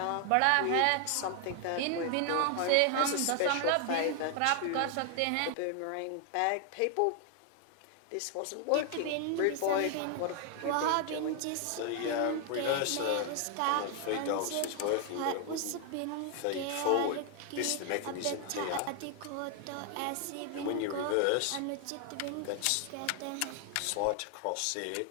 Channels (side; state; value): both; different; correlation 0.00